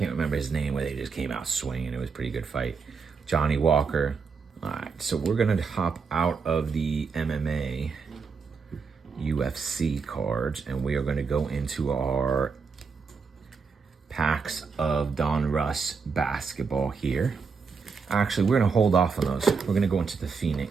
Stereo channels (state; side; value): quieter; left; 5.3 dB